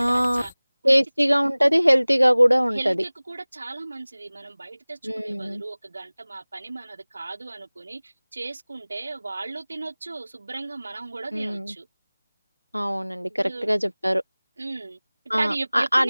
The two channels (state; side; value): inverted; both; correlation -1.00